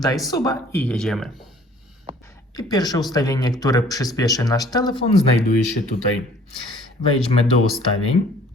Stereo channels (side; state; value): both; normal; correlation 0.54